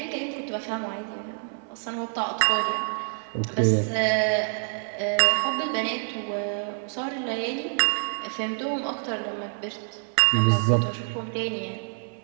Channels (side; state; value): left; silent; 60 dB below the other